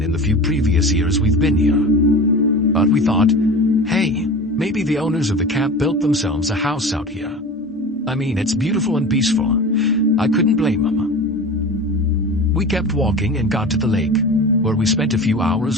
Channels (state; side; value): normal; both; correlation 0.33